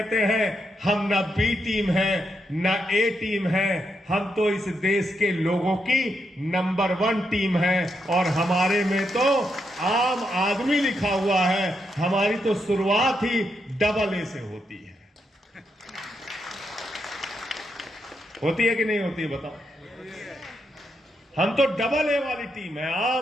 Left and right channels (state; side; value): normal; both; correlation 0.81